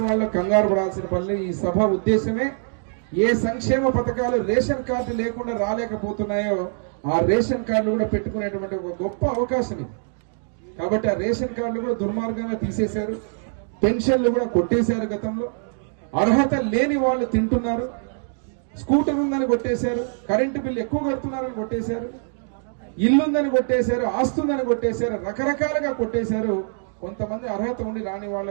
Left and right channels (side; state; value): left; silent; digital silence